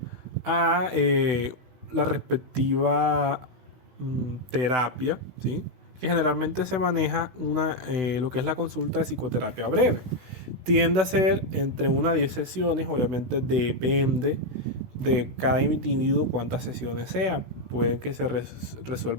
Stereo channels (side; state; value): left; late; 16 ms